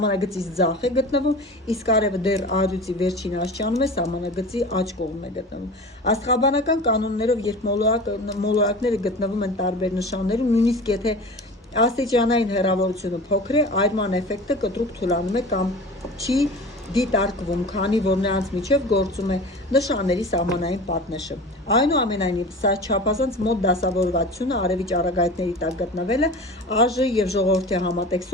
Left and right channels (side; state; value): both; normal; correlation 0.36